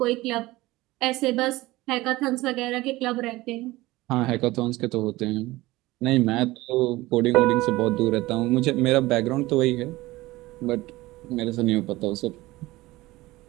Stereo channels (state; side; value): quieter; left; 19.1 dB